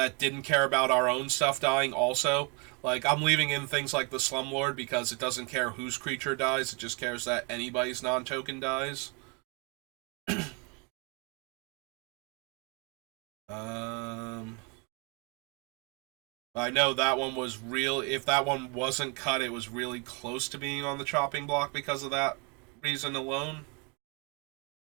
didn't care about our own stuff dying also. Like, I'm leaving in things like the Slumlord because it doesn't care whose creature dies, it just cares that anybody's non-token dies. I know that one was real. If that one wasn't cut, it was really close to being on the chopping block because of that reason alone.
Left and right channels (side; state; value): left; quieter; 32.9 dB